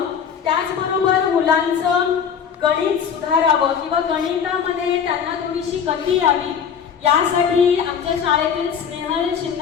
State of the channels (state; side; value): quieter; right; 7.3 dB